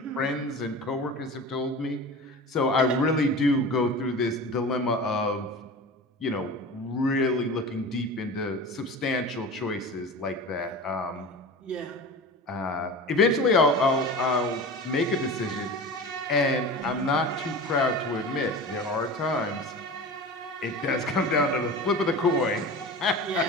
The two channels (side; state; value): both; normal; correlation 0.33